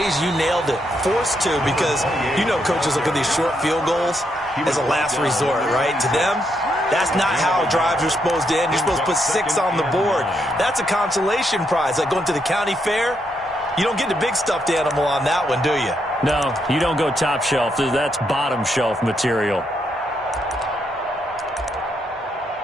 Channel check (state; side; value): normal; both; correlation 0.78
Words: you nailed it, forced to, because you know coaches look at these short field goals as a last resort, right? To them, that's not how drives are supposed to end. You're supposed to put 6 on the board. That's a consolation prize. Like going to the county fair, you don't get the big stuffed animal on that one, do you? No, you don't go top shelf. That's bottom shelf material.